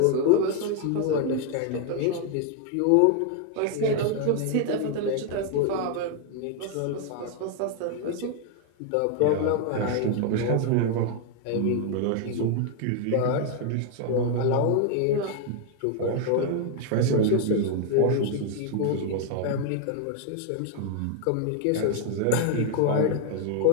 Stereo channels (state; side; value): different; both; correlation 0.00